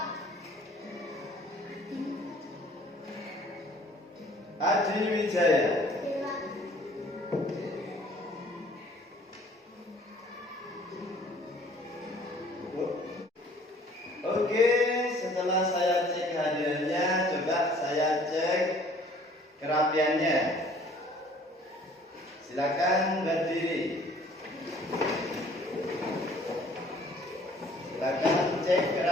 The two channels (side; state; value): both; normal; correlation 0.55